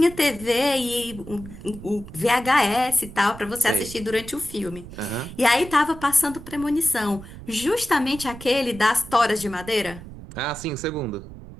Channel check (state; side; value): noise; right; rumble, 15 dB below the sound